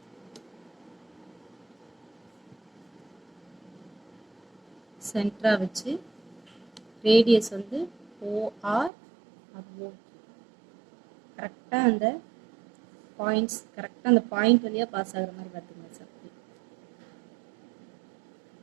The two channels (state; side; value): drops out; left; at 8.9 s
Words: சென்டரா வச்சு ரேடியஸ் வந்து ஓஆர் ஓ. கரெக்டா அந்த பாயிண்ட்ஸ் கரெக்டா அந்த பாயிண்ட் வழியா பாஸ் ஆகுற மாதிரி பார்த்துங்க சார்.